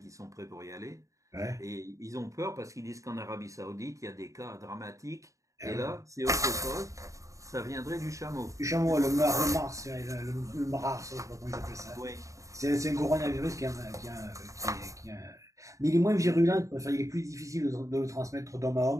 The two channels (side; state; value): left; late; 0.16 ms